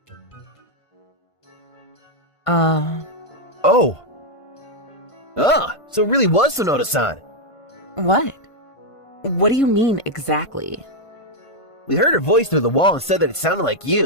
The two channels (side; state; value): right; late; 1.5 ms